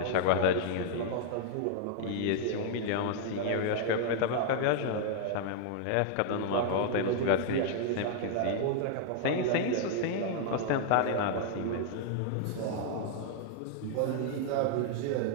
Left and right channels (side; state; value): both; different; correlation -0.01